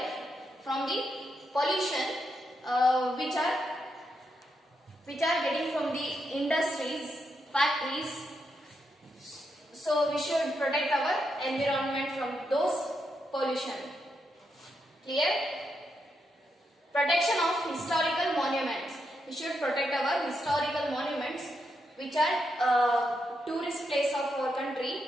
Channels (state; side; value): normal; both; correlation 0.82